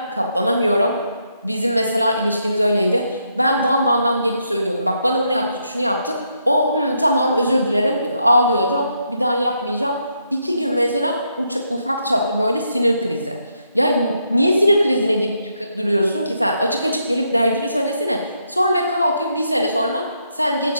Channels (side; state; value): both; inverted; correlation -0.78